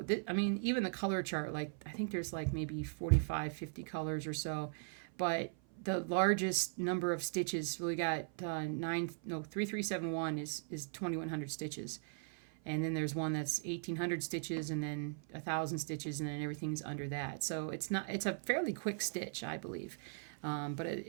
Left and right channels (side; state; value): left; silent; 52 dB below the other